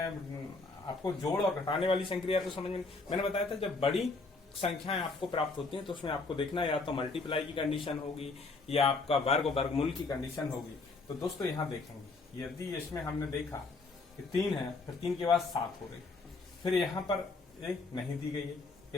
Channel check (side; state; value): right; quieter; 3.8 dB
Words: आपको जोड़ और घटाने वाली संक्रिया तो समझ में, मैंने बताया था जब बड़ी संख्याएं आपको प्राप्त होती हैं तो उसमें आपको देखना है या तो मल्टीप्लाई की कंडीशन होगी या आपका वर्ग वर्गमूल की कंडीशन होगी। तो दोस्तों यहाँ देखेंगे, यदि इसमें हमने देखा कि 3 है, फिर 3 के बाद 7 हो रही, फिर यहाँ पर एक नहीं दी गई है,